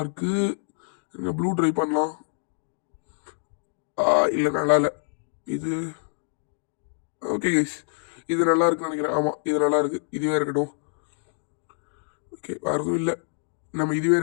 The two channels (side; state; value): right; silent; digital silence